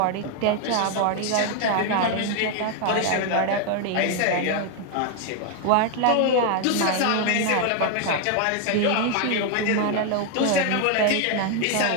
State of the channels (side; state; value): both; different; correlation 0.01